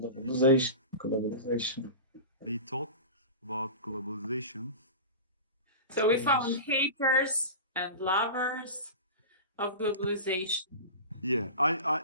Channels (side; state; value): both; inverted; correlation -0.30